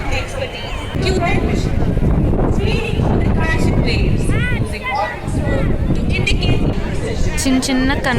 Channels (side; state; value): both; identical; correlation 1.00